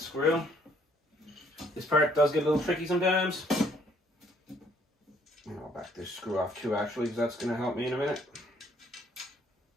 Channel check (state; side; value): normal; both; correlation 0.65